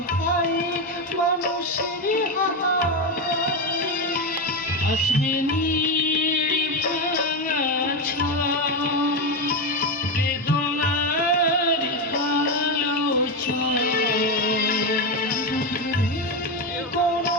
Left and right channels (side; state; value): both; normal; correlation 0.11